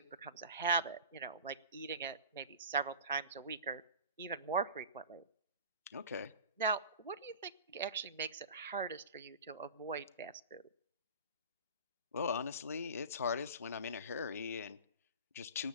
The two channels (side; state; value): both; inverted; correlation -0.36